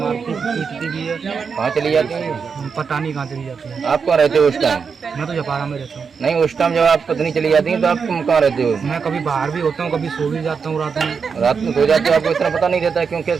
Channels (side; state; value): left; quieter; 5.8 dB